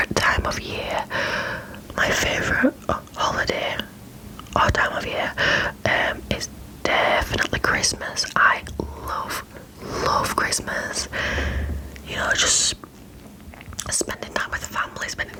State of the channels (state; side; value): identical; both; correlation 1.00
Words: time of year. My favourite holiday or time of year is definitely Christmas. I love Christmas. You know, just spending time with family, spending